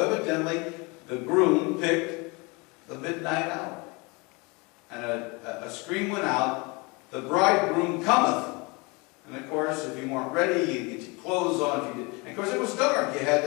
the groom picked the midnight hour. And a scream went out, "The bridegroom cometh." And of course, if you weren't ready, you get your clothes on. If you did. And of course, it was dark. You had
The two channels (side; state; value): right; quieter; 27.8 dB